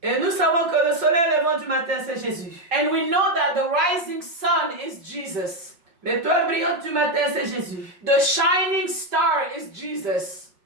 Et nous savons que le soleil levant du matin, c'est Jésus. And we know that the rising sun is Jesus. L'étoile brillante du matin, c'est Jésus. The shining star is Jesus.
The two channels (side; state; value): left; late; 5.6 ms